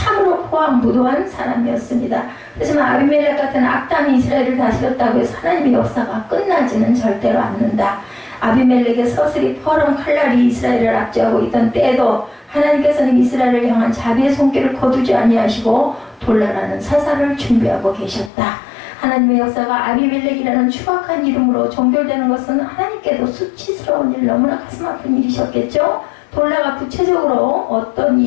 포악무도한 사람이었습니다. 하지만 아비멜렉 같은 악당이 이스라엘을 다스렸다고 해서 하나님의 역사가 끝나지는 절대로 않는다. 아비멜렉의 서슬이 퍼런 칼날이 이스라엘을 압제하고 있던 때에도 하나님께서는 이스라엘을 향한 자비의 손길을 거두지 아니하시고 돌라라는 사사를 준비하고 계셨다. 하나님의 역사가 아비멜렉이라는 추악한 이름으로 종결되는 것은 하나님께도 수치스러운 일, 너무나 가슴 아픈 일이셨겠죠. 돌라가 구체적으로 어떤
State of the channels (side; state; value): right; drops out; at 18.3 s